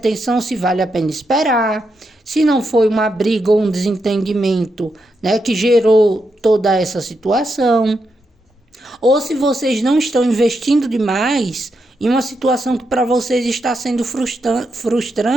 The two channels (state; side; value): normal; both; correlation 0.83